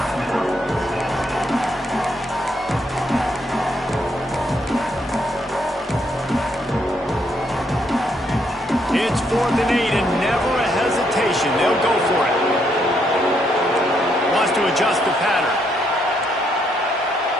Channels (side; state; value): both; normal; correlation 0.74